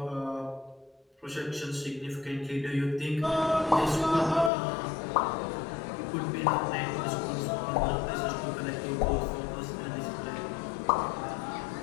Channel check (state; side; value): drops out; right; at 4.5 s